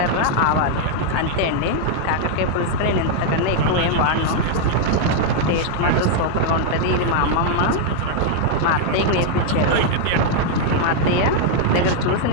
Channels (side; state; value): both; different; correlation 0.00